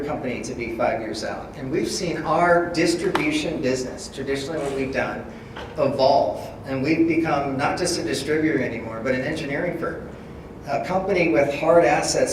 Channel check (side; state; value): both; identical; correlation 1.00